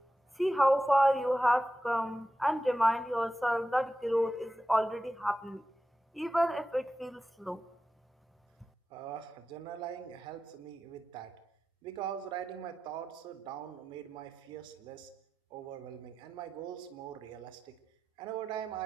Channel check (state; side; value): normal; both; correlation 0.93